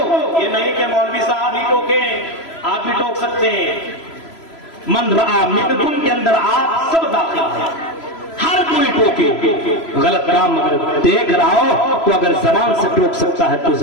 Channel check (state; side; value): late; right; 3.0 ms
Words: یہ نہیں کہ مولوی صاحب ہی ٹوکیں، آپ بھی ٹوک سکتے ہیں۔ من رعا منکم کے اندر آپ سب داخل ہیں، ہر کوئی ٹوکے۔ غلط کام اگر دیکھ رہا ہو تو اگر زبان سے ٹوک سکتا ہے تو